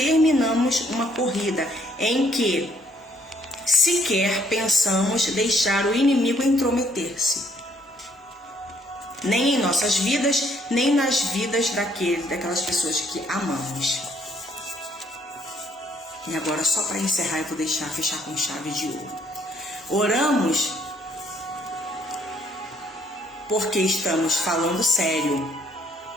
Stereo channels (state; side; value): normal; both; correlation 0.66